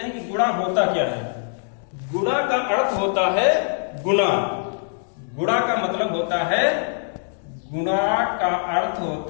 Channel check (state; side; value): silent; right; digital silence